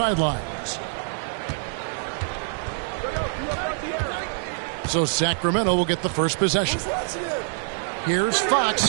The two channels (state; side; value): silent; left; 62 dB below the other